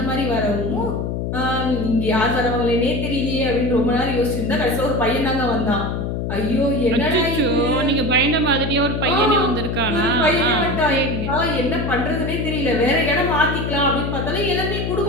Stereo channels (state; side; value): noise; left; hum, 2 dB below the sound